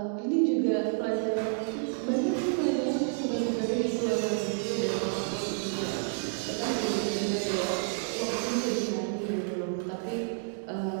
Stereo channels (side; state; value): left; silent; digital silence